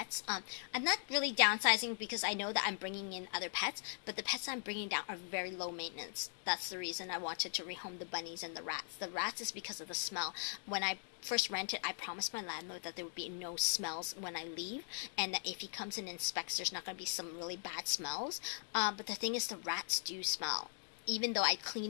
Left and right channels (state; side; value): silent; right; digital silence